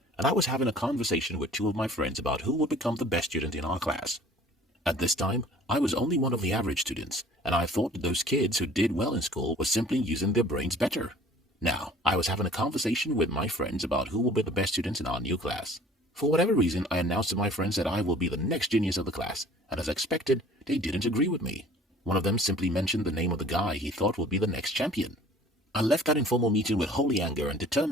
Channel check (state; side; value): normal; both; correlation 0.50